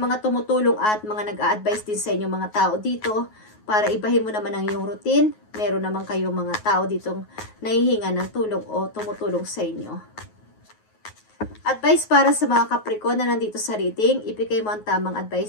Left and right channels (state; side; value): late; right; 9.4 ms